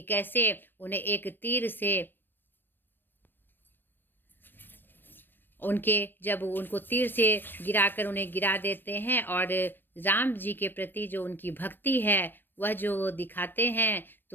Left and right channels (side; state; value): right; late; 0.095 ms